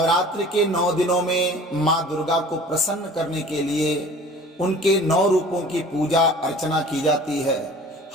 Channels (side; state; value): both; normal; correlation 0.45